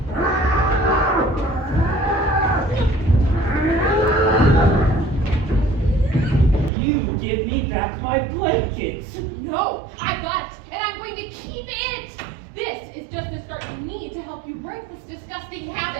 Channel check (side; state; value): left; drops out; at 6.7 s